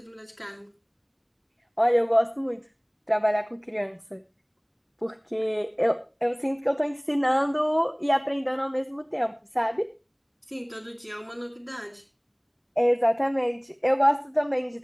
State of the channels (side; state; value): both; identical; correlation 1.00